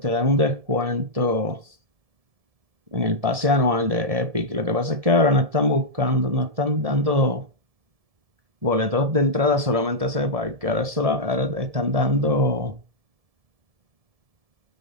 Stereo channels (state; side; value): late; left; 1.7 ms